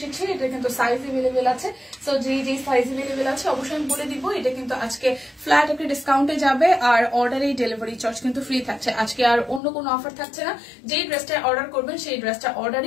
এটা কিন্তু সাইজ এভেলেবেল আছে। সো যে সাইজ এভেলেবেল আছে অবশ্যই আমি বলে দিব। এটা কিন্তু আজকে ফ্ল্যাট একটা ডিসকাউন্টে যাবে আর অর্ডারে ডেলিভারি চার্জ কিন্তু ফ্রি থাকছে। আজকে আর অন্য কোনো অফার থাকছে না। যেই ড্রেসটা অর্ডার করবেন সেই ড্রেসটা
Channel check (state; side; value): drops out; right; at 9.6 s